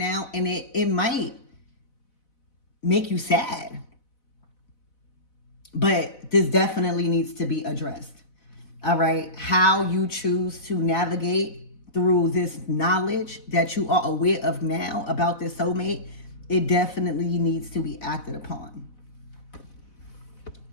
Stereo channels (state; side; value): late; right; 4.0 ms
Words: And it might make you sad. But this definitely needs to be addressed. All right. How you choose to navigate through this knowledge that you are aware of now about this soulmate, it definitely needs to be acted upon.